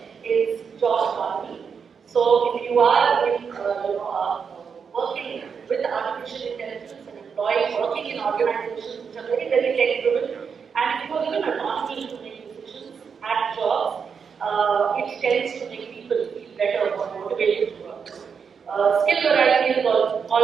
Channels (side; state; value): left; quieter; 6.3 dB